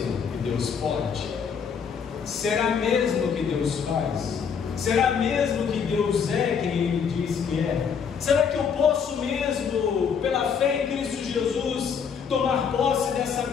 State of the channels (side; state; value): right; quieter; 6.7 dB